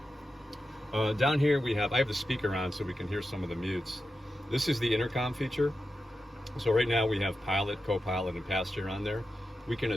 Down here I have the speaker on so we can hear some of the mutes. This is the intercom feature. So right now we have pilot, co-pilot, and passenger on there. We can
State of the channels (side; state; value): both; normal; correlation 0.90